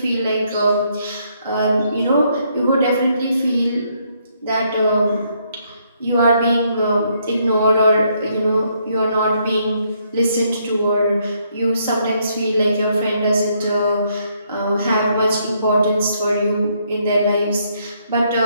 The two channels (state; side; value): inverted; both; correlation -0.72